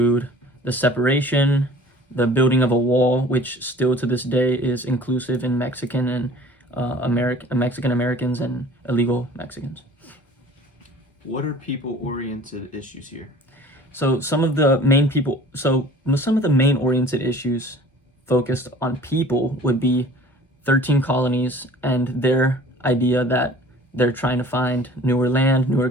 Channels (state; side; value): normal; both; correlation 0.47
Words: the separation, the building of a wall, which still to this day is inclusive in Mexican and Mexican Americans and illegal Mexicans. What are people-oriented issues here? So some of the main oriented issues focused on people would be 13 colonies and their idea that they're trying to find newer land, newer